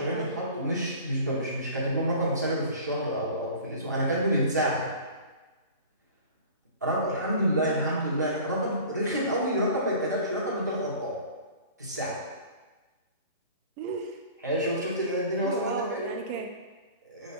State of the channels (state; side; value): inverted; both; correlation -0.43